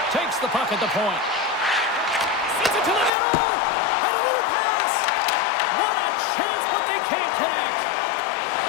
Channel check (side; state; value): right; drops out; at 3.1 s